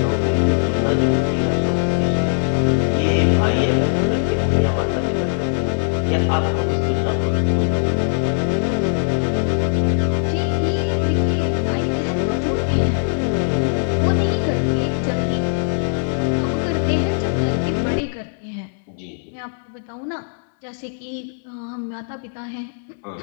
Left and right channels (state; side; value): silent; right; digital silence